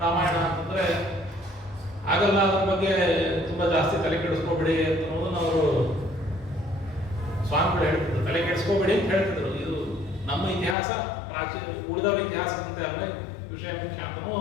ರಾಮಾಯಣ ಅಂತಂದ್ರೆ ಆಗಲ್ಲ, ಅದ್ರ ಬಗ್ಗೆ ತುಂಬಾ ಜಾಸ್ತಿ ತಲೆ ಕೆಡಿಸ್ಕೋಬೇಡಿ ಅನ್ನೋದನ್ನ ಅವರು ಸ್ವಾಮಿಗಳು ಹೇಳ್ತಿದ್ರು. ತಲೆ ಕೆಡಿಸ್ಕೋಬೇಡಿ ಅಂತ ಹೇಳ್ತಿದ್ರು. ಇದು ನಮ್ಮ ಇತಿಹಾಸ ಪ್ರಾಚೀನ ಉಳಿದವರ ಇತಿಹಾಸದಂತೆ ಅಲ್ಲ, ವಿಷಯ ಮುಖ್ಯ ಅಂತ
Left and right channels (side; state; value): right; drops out; at 10.8 s